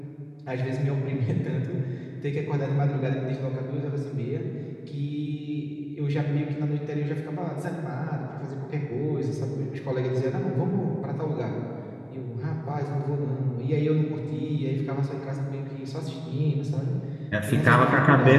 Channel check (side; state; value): both; identical; correlation 1.00